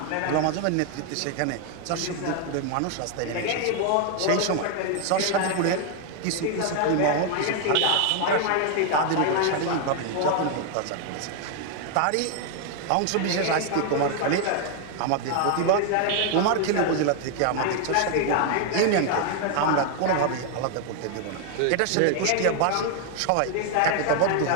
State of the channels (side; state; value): both; different; correlation 0.00